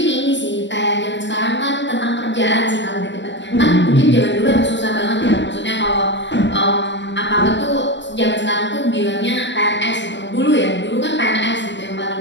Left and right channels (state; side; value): late; right; 0.53 ms